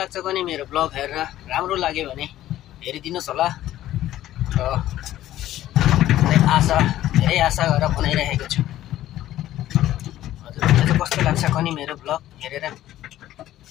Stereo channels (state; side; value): quieter; right; 13.6 dB